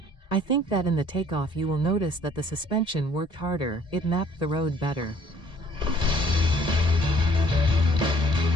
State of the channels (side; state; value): right; late; 1.8 ms